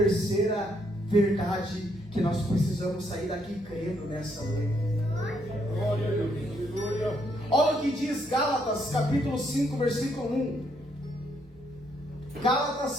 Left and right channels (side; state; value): both; normal; correlation 0.73